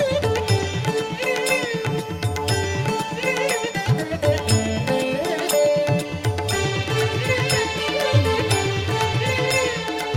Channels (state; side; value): identical; both; correlation 1.00